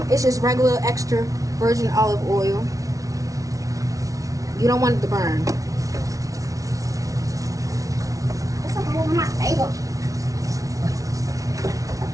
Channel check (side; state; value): left; late; 0.17 ms